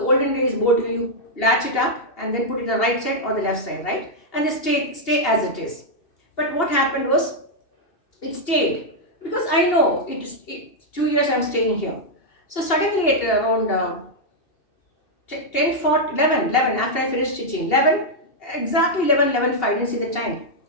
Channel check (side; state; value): right; late; 2.8 ms